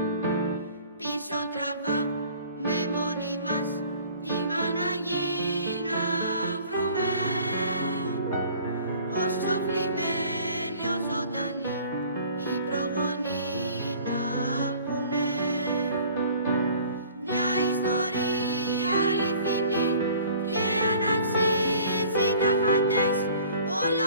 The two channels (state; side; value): inverted; both; correlation -0.50